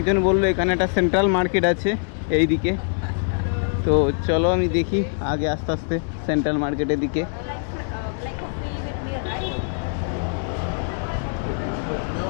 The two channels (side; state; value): right; silent; digital silence